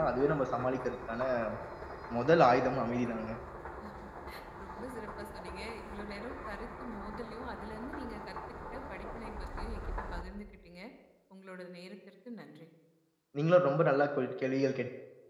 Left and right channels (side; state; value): both; identical; correlation 1.00